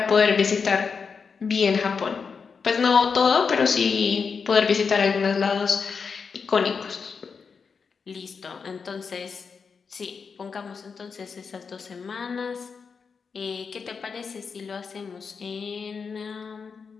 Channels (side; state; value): right; quieter; 5.6 dB